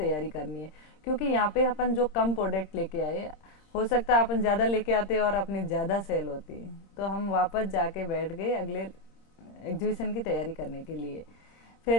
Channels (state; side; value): late; right; 26 ms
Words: करनी है, क्योंकि यहाँ पे अपन जो कम प्रोडक्ट लेके आए, हो सकता है अपन ज्यादा लेके आते और अपनी ज्यादा सेल होती। तो हम वापस जाके बैठ गए अगले एग्जीबिशन की तैयारी करने के लिए।